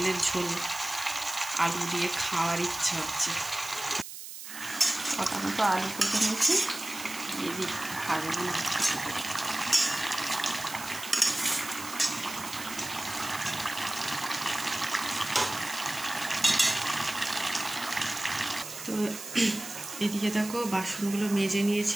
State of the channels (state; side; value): noise; right; hiss, 11 dB below the sound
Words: ঝোল আলু দিয়ে খাওয়ার ইচ্ছা হচ্ছে। কটা মতো আলু কেটে নিয়েছি, দিয়ে দিই ভাজবো না। তো এদিকে দেখো বাসনগুলো মেজে